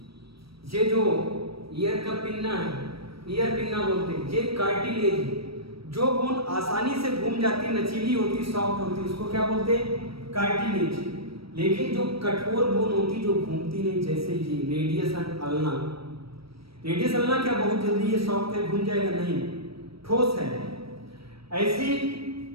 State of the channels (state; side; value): late; left; 0.75 ms